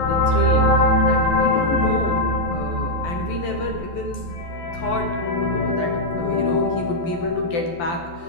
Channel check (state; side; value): late; right; 12 ms